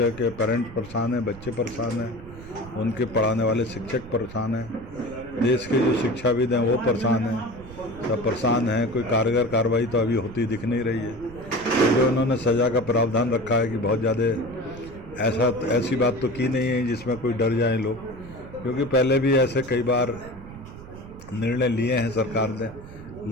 के पेरेंट्स परेशान हैं, बच्चे परेशान हैं, उनके पढ़ाने वाले शिक्षक परेशान हैं, देश के जो शिक्षाविद हैं वो परेशान हैं, सब परेशान हैं। कोई कारगर कार्रवाई तो अभी होती दिख नहीं रही है। जो उन्होंने सज़ा का प्रावधान रखा है कि बहुत ज़्यादा ऐसी बात तो की नहीं है जिसमें कोई डर जाए लोग, क्योंकि पहले भी ऐसे कई बार निर्णय लिए हैं सरकार ने,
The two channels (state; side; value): noise; right; rumble, 16 dB below the sound